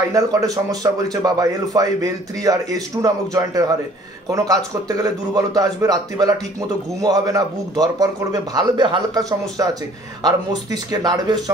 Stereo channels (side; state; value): both; normal; correlation 0.55